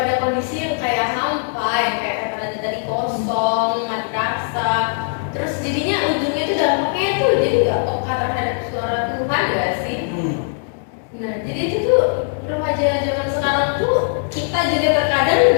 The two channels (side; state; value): right; silent; digital silence